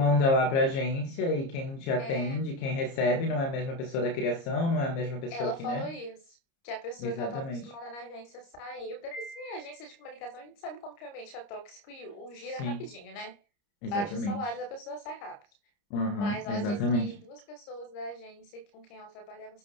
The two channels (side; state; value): right; late; 30 ms